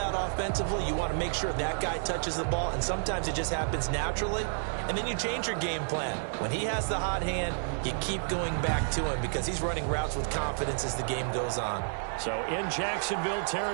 offensively. You want to make sure that guy touches the ball, and sometimes it just happens naturally. And then you change your game plan. When he has the hot hand, you keep going back to him because he's running routes with confidence as the game goes on. So in Jacksonville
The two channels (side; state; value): left; silent; 56 dB below the other